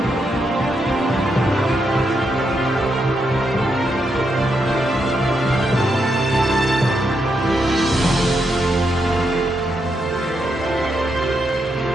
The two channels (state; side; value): normal; both; correlation 0.81